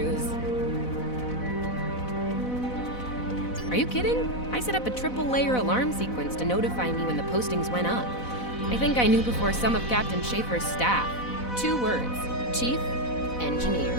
Are you kidding? I set up a triple-layer alarm sequence to notify me when the postings went up. I think I knew before some of Captain Schaefer's staff. 2 words. Chief Engineer.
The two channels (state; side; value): late; right; 4.0 ms